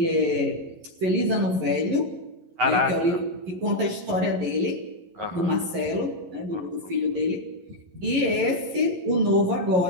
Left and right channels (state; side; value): late; left; 11 ms